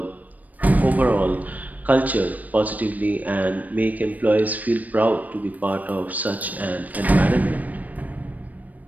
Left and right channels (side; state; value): left; late; 0.077 ms